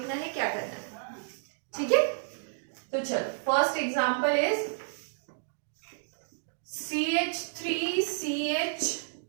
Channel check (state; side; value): silent; left; digital silence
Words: है, क्या करना है. ठीक है, तो चलो first example is CH3CH